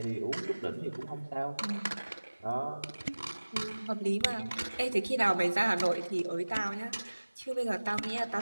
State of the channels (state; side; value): inverted; both; correlation -1.00